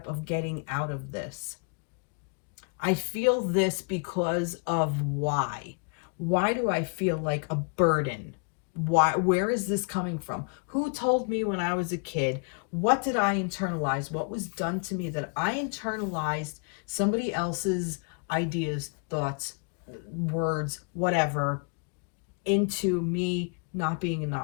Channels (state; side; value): quieter; right; 38.9 dB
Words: of getting out of this? I feel this because of why. Why do I feel like a burden? Where is this coming from? Who told me when I was a kid? What did I internalize? What was done to me that I internalized somebody else's ideas, thoughts, words, whatever, into me not being